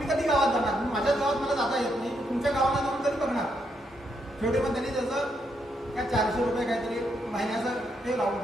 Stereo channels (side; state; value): both; normal; correlation 0.78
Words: कधी गावात जाणार? माझ्याच गावात मला जाता येत नाही, तुमच्या गावाला जाऊन तरी बघणार. शेवटी मग त्यांनी त्याचं काय 400 रुपये काहीतरी महिन्याचं ते लावून